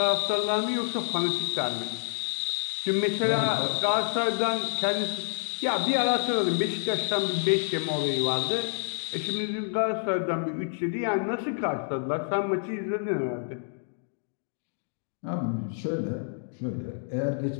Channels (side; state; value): right; silent; digital silence